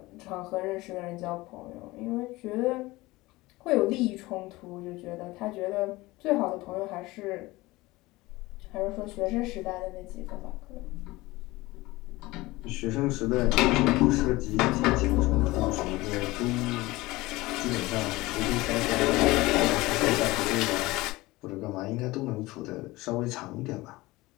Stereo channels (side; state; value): right; quieter; 20.3 dB